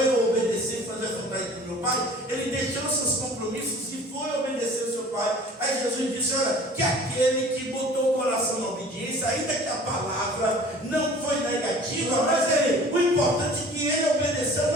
eu obedecer e fazer a vontade do meu pai. Ele deixou seus compromissos e foi obedecer ao seu pai. Aí Jesus disse: olha, que aquele que botou o coração na obediência, ainda que a palavra não foi negativa, mas o importante é que ele obedeceu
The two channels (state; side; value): normal; both; correlation 0.46